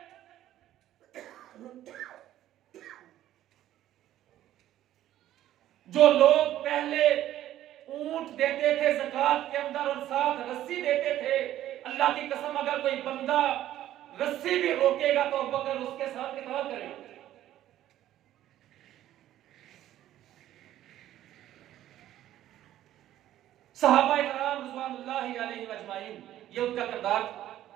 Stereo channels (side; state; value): left; quieter; 12.9 dB